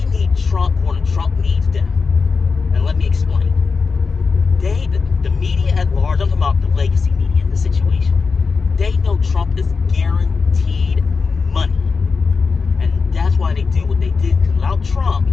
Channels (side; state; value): right; quieter; 4.8 dB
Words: need Trump more than Trump needs them. And let me explain. The media at large, I'm talking about the legacy media in this situation, they know Trump is guaranteed money. And that's why they do what they do. Because without Trump